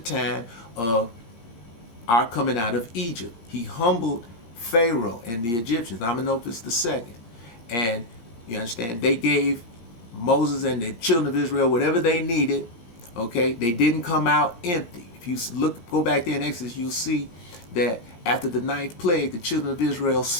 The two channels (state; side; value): late; right; 17 ms